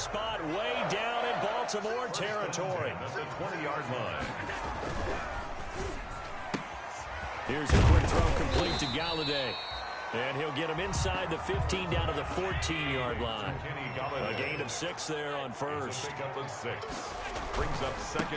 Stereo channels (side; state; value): both; identical; correlation 1.00